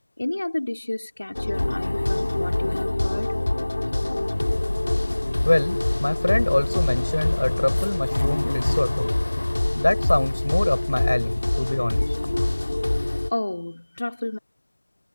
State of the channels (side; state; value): both; inverted; correlation -1.00